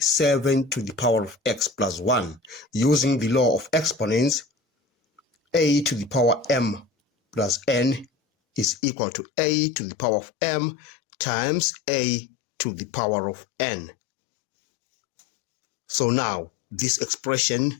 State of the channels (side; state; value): right; drops out; at 8.8 s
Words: to the power of x plus 1 using the law of exponents. A to the power m plus n is equal to a to the power of m times a to the power of n. So now this